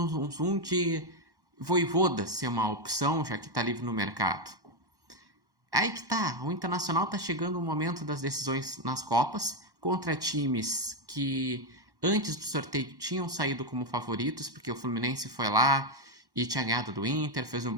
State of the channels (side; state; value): left; late; 1.1 ms